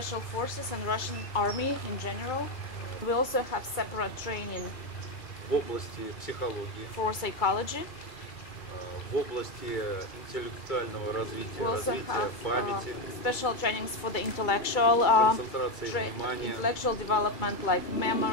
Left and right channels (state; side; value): late; right; 2.2 ms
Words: forces and Russian army in general. We also have separate training В области психологии, for psychology. в области интеллектуального развития, We also развития have памяти, special trainings for the intellectual концентрации внимания, intellectual development like